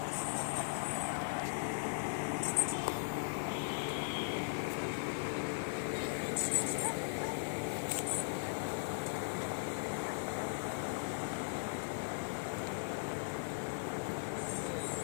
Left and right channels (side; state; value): right; silent; digital silence